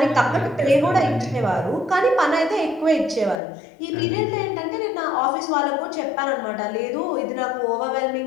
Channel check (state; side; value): drops out; right; at 3.4 s